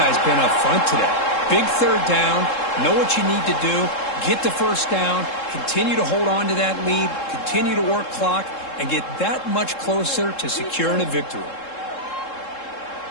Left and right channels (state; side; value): late; right; 3.7 ms